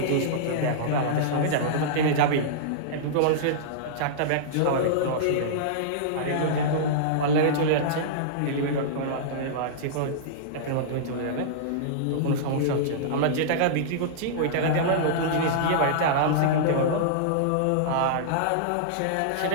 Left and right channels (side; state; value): both; different; correlation -0.03